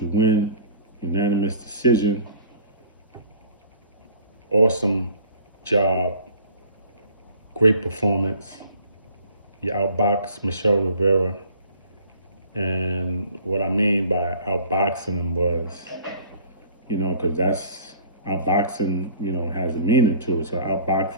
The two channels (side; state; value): both; inverted; correlation -0.50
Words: win, unanimous decision. Awesome job, great performance. You outboxed Michelle Rivera, and what I mean by outboxing him was, because that's outboxing, has a meaning to it. So